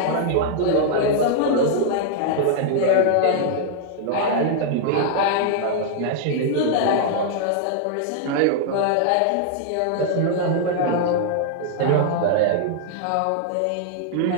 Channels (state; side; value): different; both; correlation -0.01